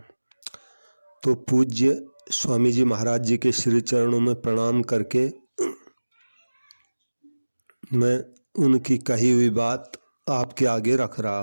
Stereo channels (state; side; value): inverted; both; correlation -1.00